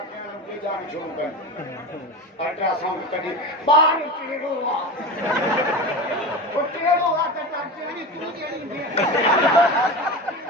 अल्ट्रासाउंड कॾहिं ॿार टेढ़ो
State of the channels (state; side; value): normal; both; correlation 0.26